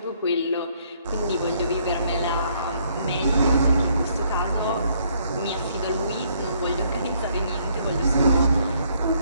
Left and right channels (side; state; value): both; inverted; correlation -0.67